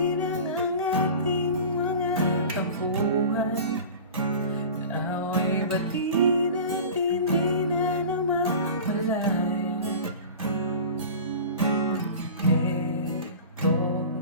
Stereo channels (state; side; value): inverted; both; correlation -0.36